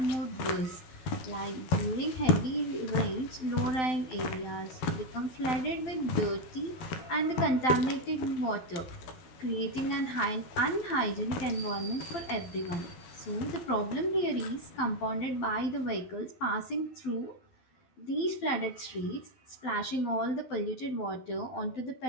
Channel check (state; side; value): late; right; 12 ms